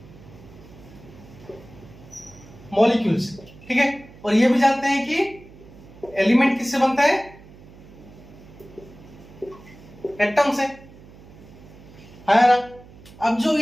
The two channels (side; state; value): right; noise; hum, 21 dB below the sound